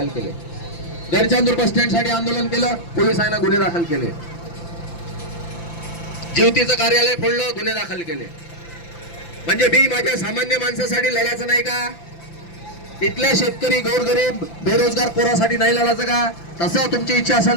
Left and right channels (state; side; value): late; right; 5.9 ms